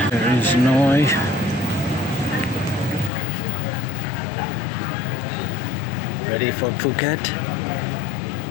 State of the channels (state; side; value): drops out; right; at 3.1 s